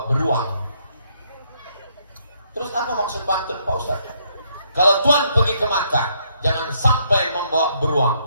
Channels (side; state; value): both; inverted; correlation -0.72